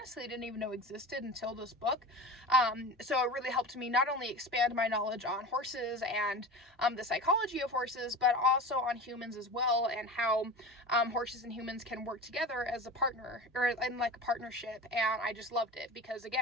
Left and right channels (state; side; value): normal; both; correlation 0.32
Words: didn't even know existed until this book. So it really helped me not only expand my knowledge on horses and the psychology of horses, but also on humans as well, and how horses and humans can work together as a partner, or in like a partnership. And I just loved it because,